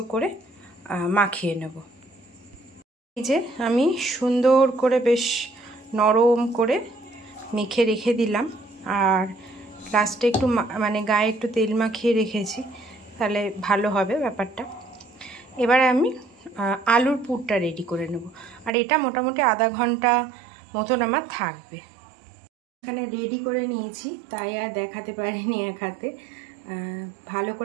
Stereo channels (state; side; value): drops out; left; at 18.7 s